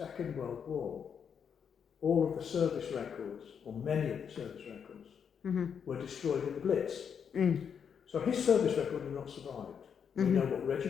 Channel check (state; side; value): quieter; right; 7.3 dB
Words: World War, all of the service records, or many of the service records, were destroyed in the Blitz. So his service record has not survived. We know what